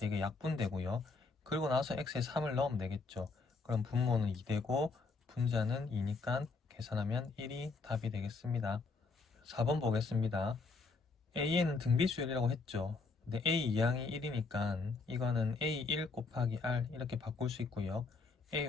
이게 약분되고요. 그리고 나서 x에 3을 넣으면 되겠죠. 그럼 분모는 2 되고 분자는 2니까 계산하면 1이 답이 되겠습니다. 4번 보겠습니다. A에는 등비수열이라고 했죠. 근데 A 이항이 1이니까 이거는 A1 곱하기 R 이렇게 바꿀 수 있고요. A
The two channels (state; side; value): quieter; right; 4.2 dB